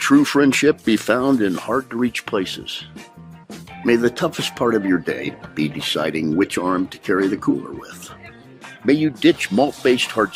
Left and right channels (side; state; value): both; identical; correlation 1.00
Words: friendship be found in hard-to-reach places. May the toughest part of your day be deciding which arm to carry the cooler with. May you ditch malt-based